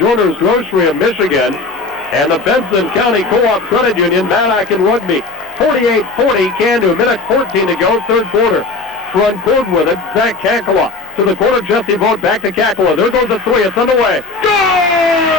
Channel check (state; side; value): quieter; right; 3.7 dB